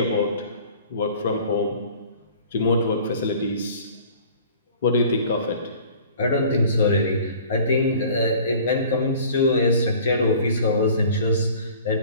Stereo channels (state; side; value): inverted; both; correlation -0.48